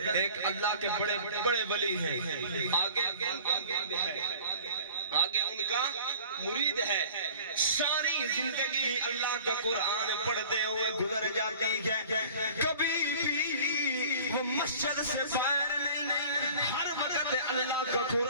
ایک اللہ کے بڑے بڑے ولی ہیں، آگے ان کا مرید ہے، ساری زندگی اللہ کا قرآن پڑھتے ہوئے گزر جاتی ہے، کبھی بھی وہ مسجد سے باہر نہیں، ہر وقت اللہ کا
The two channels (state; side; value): inverted; both; correlation -0.46